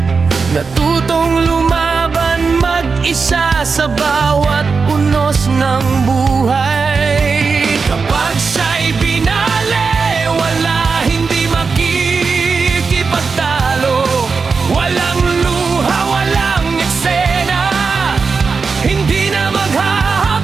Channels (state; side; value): quieter; left; 4.9 dB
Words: Natutong lumaban mag-isa sa bawat unos ng buhay. Kapag siya'y binali, wala, hindi makikipagtalo. Walang luha, walang eksena, hindi na